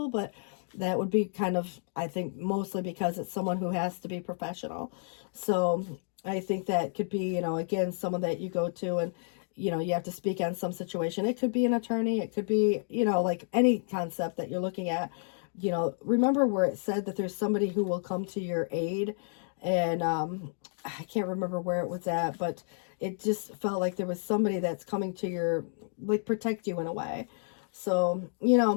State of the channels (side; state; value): right; silent; digital silence